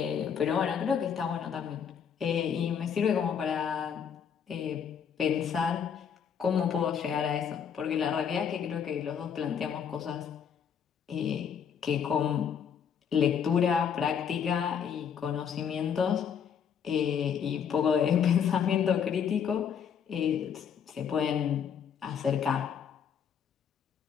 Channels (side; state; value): right; quieter; 7.6 dB